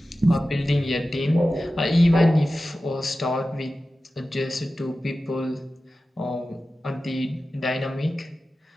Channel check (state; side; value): normal; both; correlation 0.94